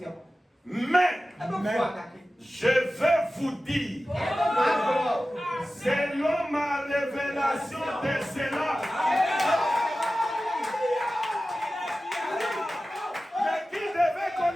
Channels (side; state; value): both; normal; correlation 0.95